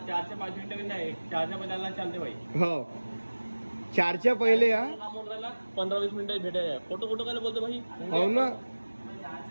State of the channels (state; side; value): inverted; both; correlation -1.00